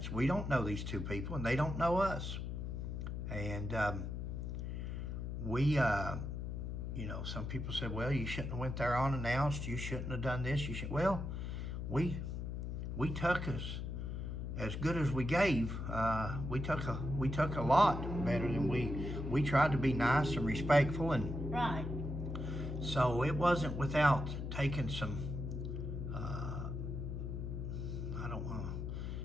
We don't know these two people, and they don't know us. And some people said, well, you shouldn't have went there unannounced. You shouldn't have done this. Well, we took as good as we gave. We took a lot better than we tried to be nice and respectful, and Right. so it wasn't without taking some. I don't want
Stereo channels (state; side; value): noise; left; hum, 4 dB below the sound